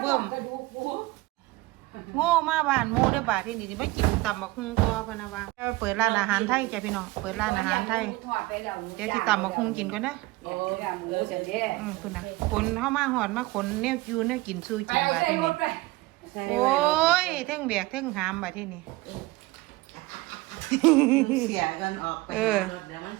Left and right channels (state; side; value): quieter; left; 20.6 dB